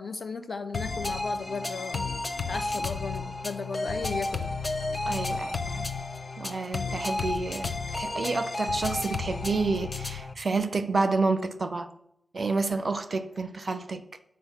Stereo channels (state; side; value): normal; both; correlation 0.87